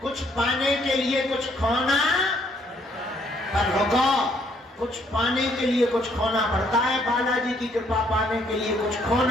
कुछ पाने के लिए कुछ खोना, पर रुको, कुछ पाने के लिए कुछ खोना पड़ता है। बालाजी की कृपा पाने के लिए कुछ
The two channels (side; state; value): both; normal; correlation 0.67